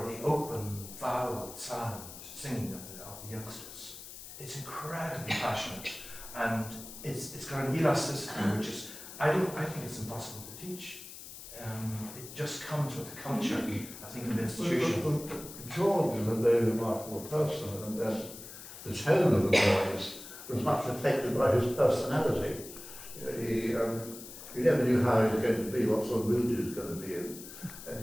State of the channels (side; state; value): left; noise; hiss, 13 dB below the sound